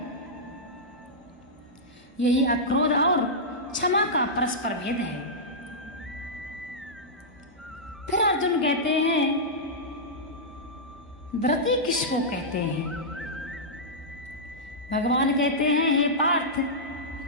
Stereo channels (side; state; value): both; normal; correlation -0.11